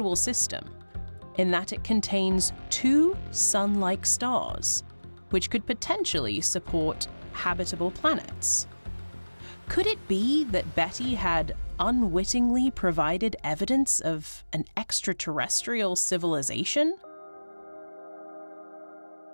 system in that it contains two sun-like stars, which could potentially support habitable planets. Could it be that Betty had unwittingly provided evidence of an extraterrestrial civilization?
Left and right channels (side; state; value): both; inverted; correlation -1.00